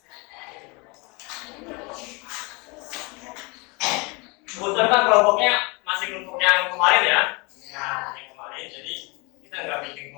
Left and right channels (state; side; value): quieter; right; 28.5 dB